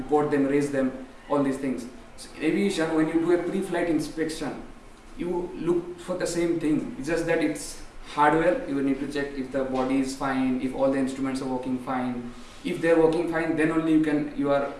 them, raise them, all these things. So in aviation, when you do a pre-flight inspection, you look for the same thing. It's just that it's hardware. You need to check if the body is fine, if all the instruments are working fine. If they're working fine, then only you are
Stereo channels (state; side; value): identical; both; correlation 1.00